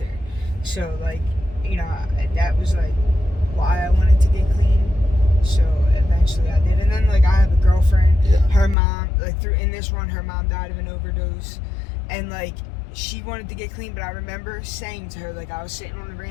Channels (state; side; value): drops out; right; at 8.8 s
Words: So, like, you know, that was, like, why I wanted to get clean. So eventually I did. And then, like, I have a girlfriend. Yeah. Her mom, like, in this run, her mom died of an overdose. And, like, she wanted to get clean, but I remember saying to her, like, I was sitting on the